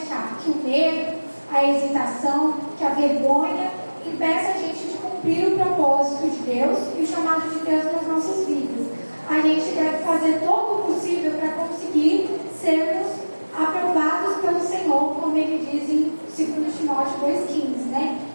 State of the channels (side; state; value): both; inverted; correlation -1.00